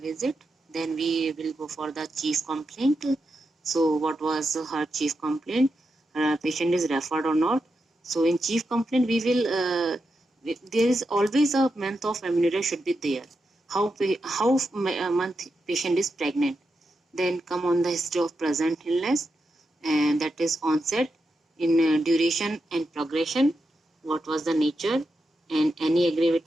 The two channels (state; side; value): normal; both; correlation 0.87